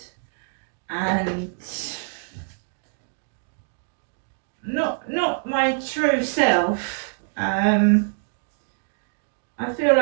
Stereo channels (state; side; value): silent; left; digital silence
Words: and not my true self. I feel